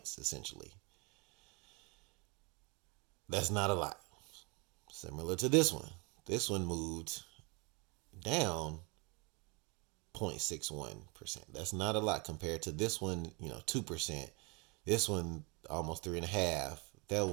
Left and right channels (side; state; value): left; quieter; 29.9 dB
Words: essentially. That's not a lot. Similar to this one. This one moved down 0.61%. That's not a lot compared to this one, 2%. This one almost 3.5%. That